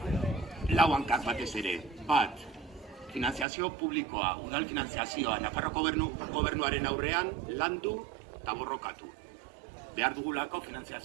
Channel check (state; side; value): drops out; left; at 3.5 s